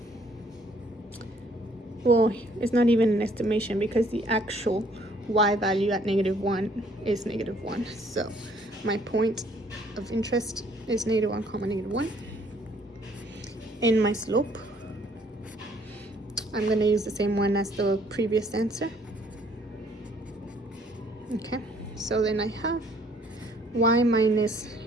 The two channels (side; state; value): both; normal; correlation 0.62